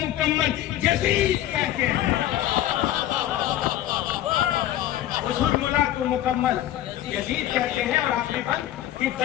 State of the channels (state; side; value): quieter; right; 13.2 dB